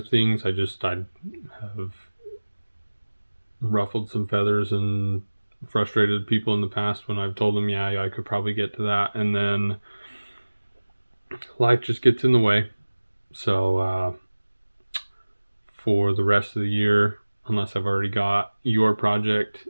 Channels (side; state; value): both; inverted; correlation -1.00